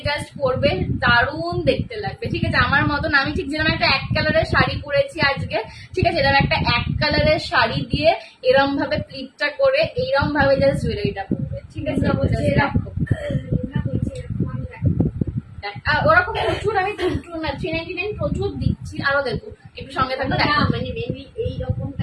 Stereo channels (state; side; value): identical; both; correlation 1.00